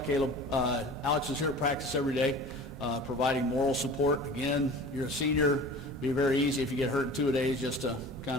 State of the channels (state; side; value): normal; both; correlation 0.40